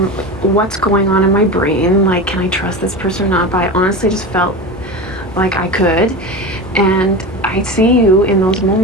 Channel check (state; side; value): noise; left; hum, 25 dB below the sound